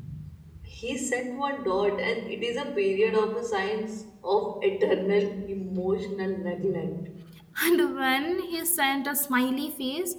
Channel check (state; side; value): identical; both; correlation 1.00